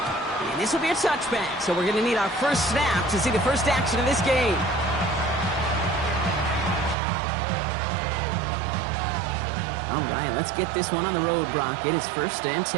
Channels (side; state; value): left; drops out; at 7.0 s